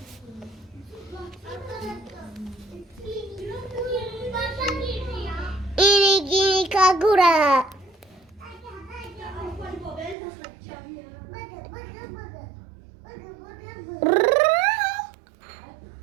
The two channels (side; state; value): left; drops out; at 10.2 s